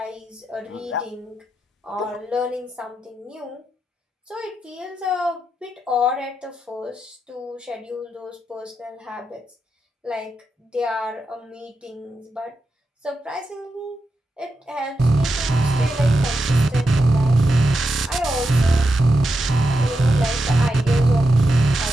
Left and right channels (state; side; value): normal; both; correlation 0.87